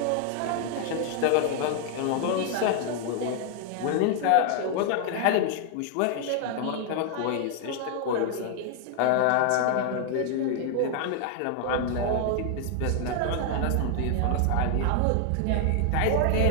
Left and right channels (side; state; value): both; different; correlation 0.00